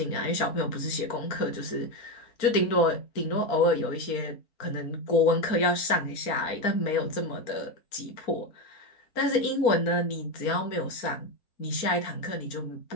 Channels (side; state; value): right; late; 4.3 ms